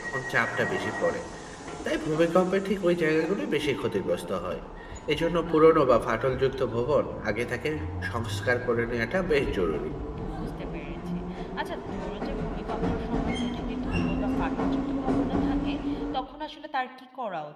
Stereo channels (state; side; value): identical; both; correlation 1.00